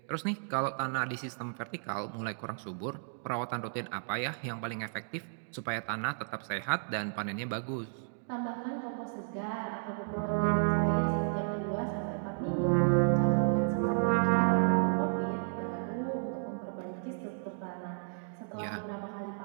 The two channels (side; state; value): left; silent; digital silence